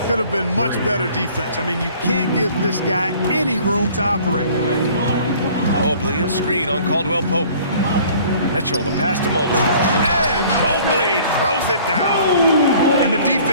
Could have been much better defense. I mean, you can't give this guy any room to operate. Mobley, a screen on Caldwell Pope. Mitchell, the pass to Mobley. And Mobley throws it down. And the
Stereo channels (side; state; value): both; inverted; correlation -0.52